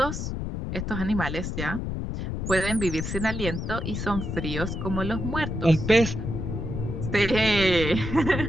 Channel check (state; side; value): noise; left; rumble, 4 dB below the sound